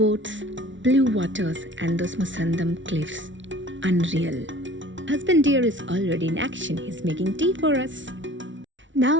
blue waters, and those Musandam cliffs. Unreal. Husband dear is already in action. He's making tea for us.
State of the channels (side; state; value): left; late; 0.55 ms